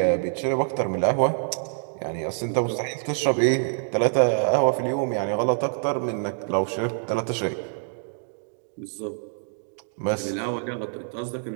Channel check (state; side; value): silent; left; digital silence